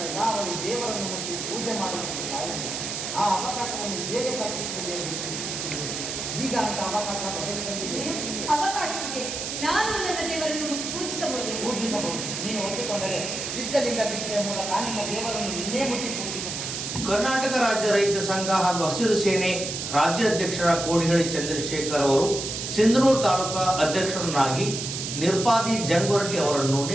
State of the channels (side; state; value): right; noise; hiss, 5 dB below the sound